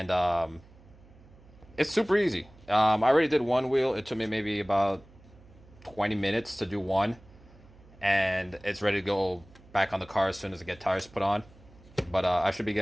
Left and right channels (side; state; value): right; noise; hum, 25 dB below the sound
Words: it's super easy. I already did one wheel. It took me maybe about 20 minutes to do one, and it's ready to go back on the car as soon as I get tires put on. But I should be